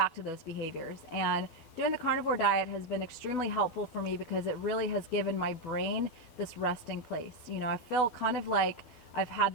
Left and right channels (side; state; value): right; late; 12 ms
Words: to those behaviors. And doing the carnivore diet has been extremely helpful for me because it really has given my brain this resting place. I feel kind of like I've had